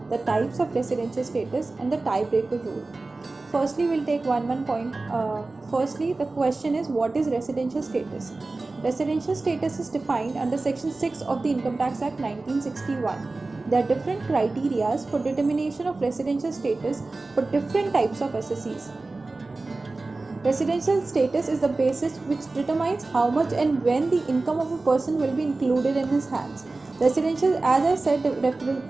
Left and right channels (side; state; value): left; quieter; 3.4 dB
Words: the types of residential status, and the tiebreaker rule. Firstly, we'll take one point. Firstly, the question is, what is residential status? Residential status is defined under Section 6 of the Income Tax Act 1961. There are different criteria for determination of residential status for different types of SSEs. Residential status is the basis which determines how much and when the income of a person will be included in his hands. Residential, as I said,